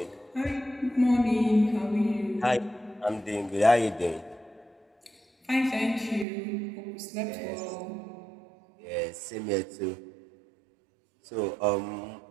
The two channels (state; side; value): drops out; left; at 6.2 s